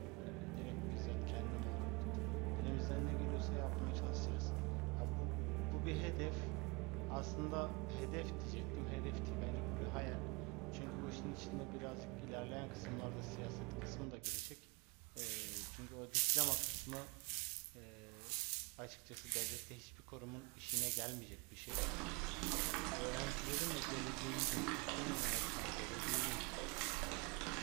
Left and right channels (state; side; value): quieter; left; 27.8 dB